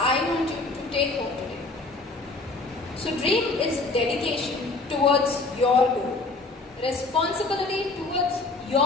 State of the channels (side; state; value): right; quieter; 3.4 dB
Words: want you to take home today. So dream is dedication towards your goal, responsibility towards